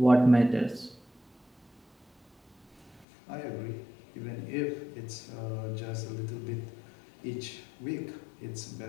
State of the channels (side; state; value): right; drops out; at 3.1 s